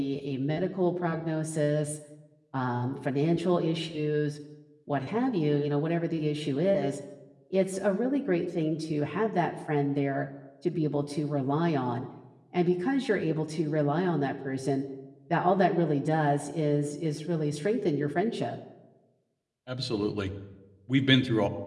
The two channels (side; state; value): both; identical; correlation 1.00